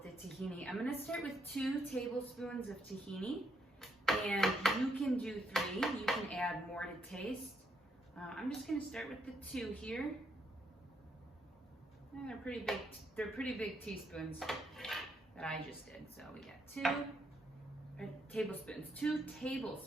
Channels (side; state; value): both; normal; correlation 0.75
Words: the tahini. I'm gonna start with 2 tablespoons of tahini, and you can do 3. You can add more to taste. I'm just gonna start with the 2 here. And they're pretty big teaspoons that I just did. So we got 2